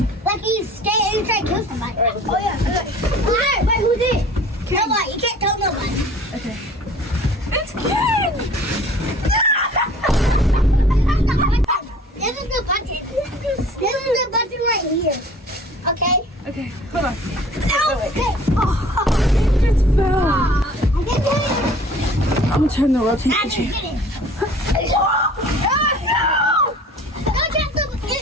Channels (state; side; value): normal; both; correlation 0.48